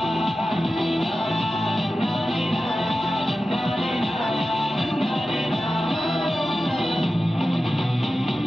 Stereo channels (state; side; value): normal; both; correlation 0.93